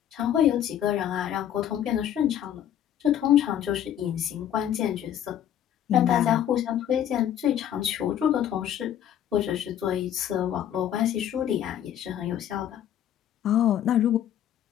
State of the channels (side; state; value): right; quieter; 10.4 dB